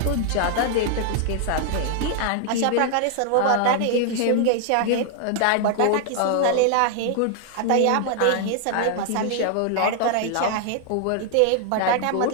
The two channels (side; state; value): both; different; correlation 0.00